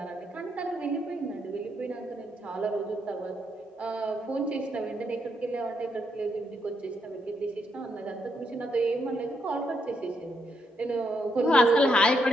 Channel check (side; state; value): both; normal; correlation 0.78